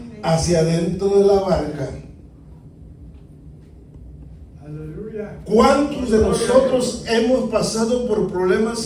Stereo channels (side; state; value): both; identical; correlation 1.00